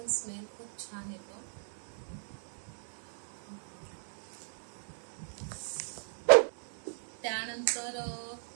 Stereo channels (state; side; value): silent; left; digital silence